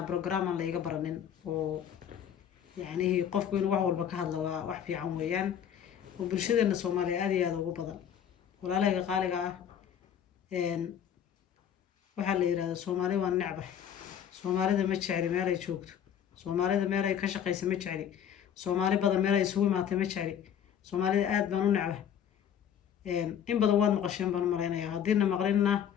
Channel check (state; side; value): quieter; right; 9.1 dB